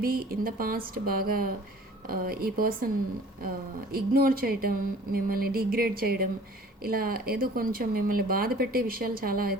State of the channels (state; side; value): normal; both; correlation 0.49